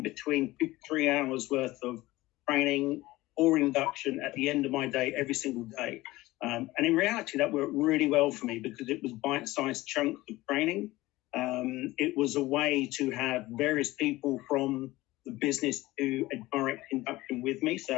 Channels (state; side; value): quieter; right; 18.7 dB